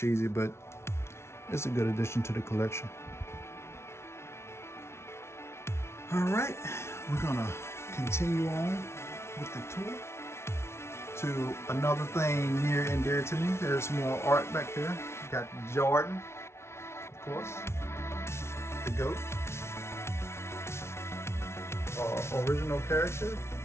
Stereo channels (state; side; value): late; right; 0.13 ms